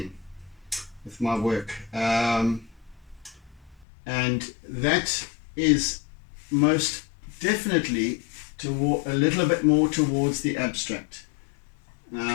with my work, and that is most definitely a little bit more towards the abstract.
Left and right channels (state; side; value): drops out; right; at 3.9 s